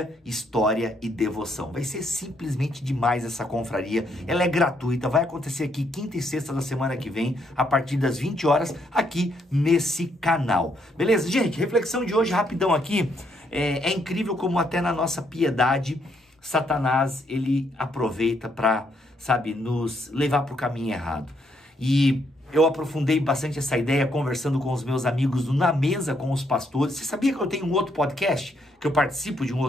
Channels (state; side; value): normal; both; correlation 0.73